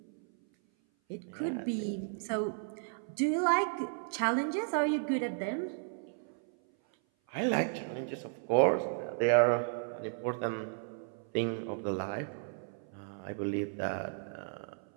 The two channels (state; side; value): silent; left; 55 dB below the other